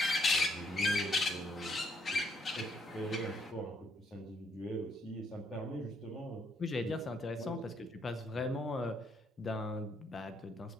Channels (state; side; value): normal; both; correlation 0.71